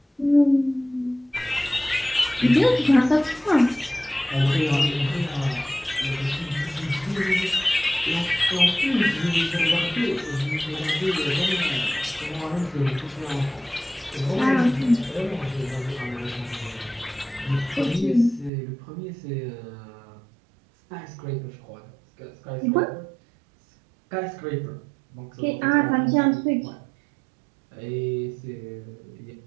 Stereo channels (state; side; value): drops out; left; at 18.5 s